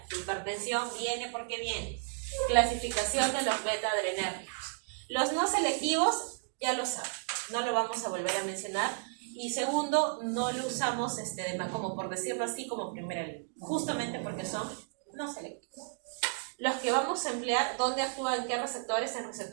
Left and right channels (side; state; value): left; silent; digital silence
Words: Su hipertensión viene porque viene. Clasificación de los beta adrenérgicos. Los no selectivos, ya lo saben, no lo vamos a volver a mencionar. Y segundo, no lo usamos como por decirlo así como primera línea, justamente porque son no selectivos. Los que vamos a emplear, ¿dónde actúan? ¿En qué receptores? En